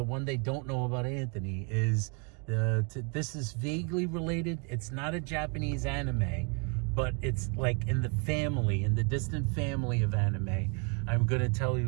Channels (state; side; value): quieter; left; 36.2 dB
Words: one they don't know about Anthony is this is vaguely related. It's not a Japanese anime, but it's like in the distant family of anime. I'm going to tell